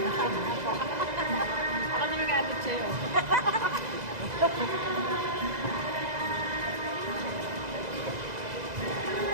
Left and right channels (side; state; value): left; late; 2.0 ms